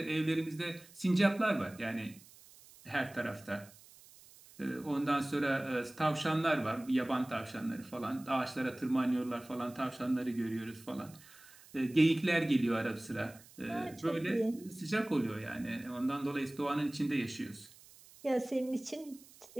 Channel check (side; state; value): right; noise; hiss, 23 dB below the sound